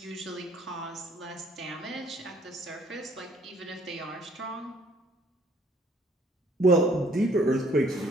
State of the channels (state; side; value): normal; both; correlation 0.62